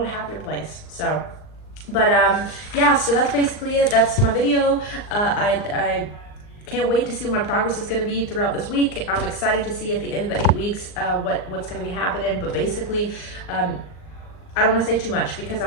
a happier place. So, but yeah, so that's basically it. That's my video. I can't wait to see what my progress is going to be throughout this week. I'm excited to see at the end of the 8 weeks what's going to be happening. But basically, I don't want to say too much because I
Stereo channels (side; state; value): right; late; 39 ms